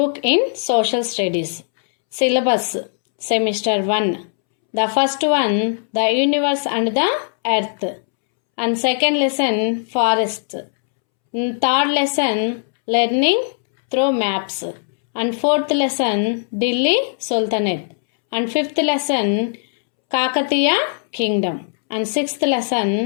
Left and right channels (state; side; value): silent; right; 66 dB below the other